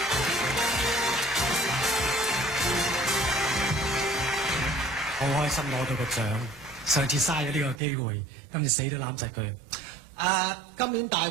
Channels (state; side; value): drops out; left; at 7.8 s